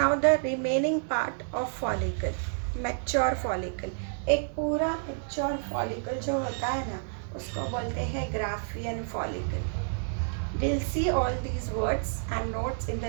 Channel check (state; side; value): silent; left; digital silence